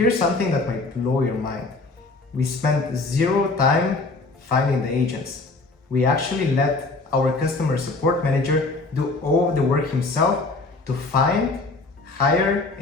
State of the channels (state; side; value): quieter; right; 3.5 dB